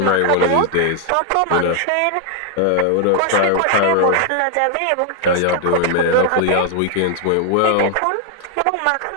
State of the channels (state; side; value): different; both; correlation 0.00